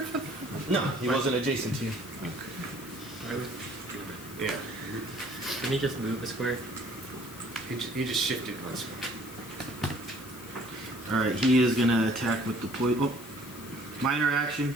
for that? No, he wasn't adjacent to you. Why would Yeah. Can he just move a square? He just shifted one square. Alright, he is gonna attack with the poison. Oh, minor action,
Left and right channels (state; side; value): noise; left; hiss, 17 dB below the sound